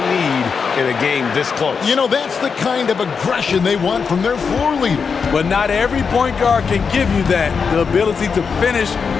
need in a game this close. You know, that's the kind of aggression they want from their floor leader. But not every point guard can give you that. The ability to finish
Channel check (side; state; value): right; quieter; 5.7 dB